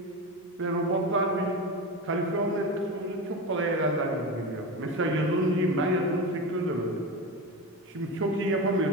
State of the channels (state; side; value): normal; both; correlation 0.22